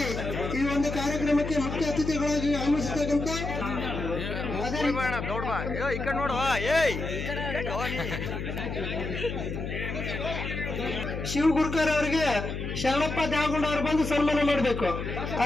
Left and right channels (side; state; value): left; noise; hum, 5 dB below the sound